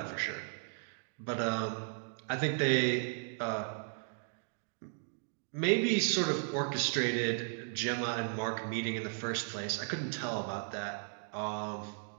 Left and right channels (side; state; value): left; silent; 54 dB below the other